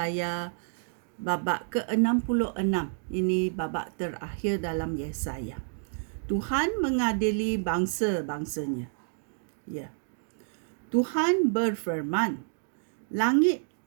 babak ke-66. Ini babak terakhir dalam Yesaya. Tuhan mengadili bangsa-bangsanya. Ya. Tuhan berfirman, langit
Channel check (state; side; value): silent; left; digital silence